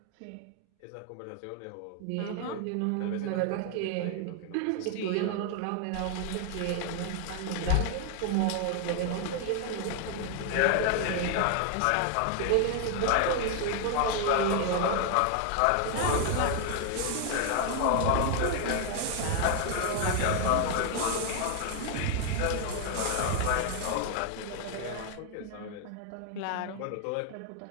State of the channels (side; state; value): both; different; correlation 0.00